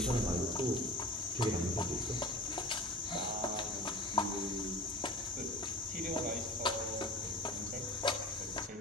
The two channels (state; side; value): normal; both; correlation 0.37